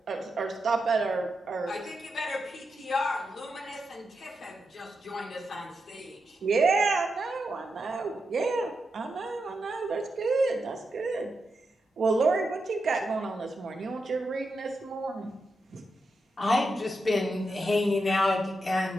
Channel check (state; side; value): normal; both; correlation 0.86